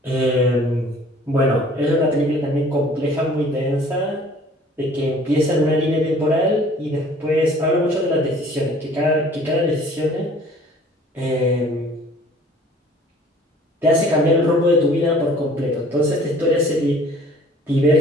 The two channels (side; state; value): both; normal; correlation 0.52